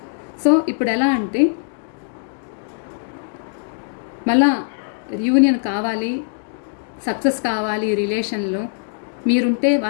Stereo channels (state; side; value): silent; right; digital silence